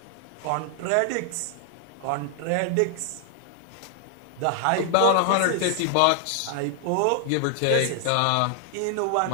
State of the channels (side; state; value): both; different; correlation 0.00